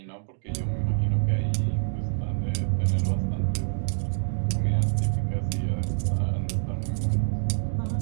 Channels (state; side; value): silent; left; digital silence